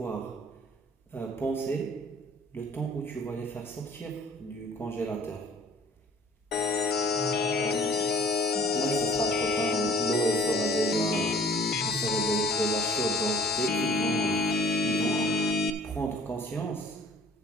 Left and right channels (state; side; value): normal; both; correlation 0.53